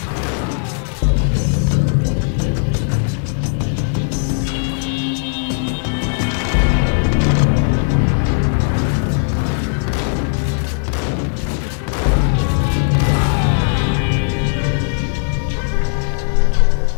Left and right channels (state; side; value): silent; right; digital silence